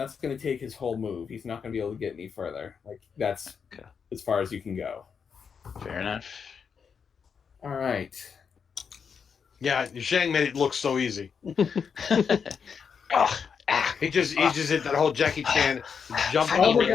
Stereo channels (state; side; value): quieter; right; 6.4 dB